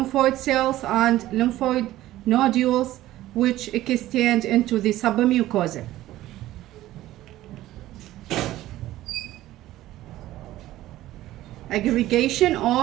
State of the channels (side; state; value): left; quieter; 15.1 dB